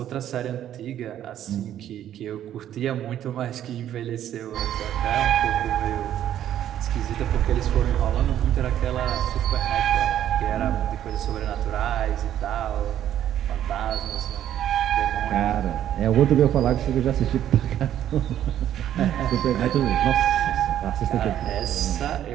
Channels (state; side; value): quieter; left; 11.1 dB